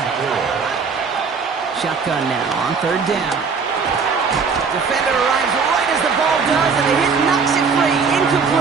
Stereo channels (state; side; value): quieter; left; 5.3 dB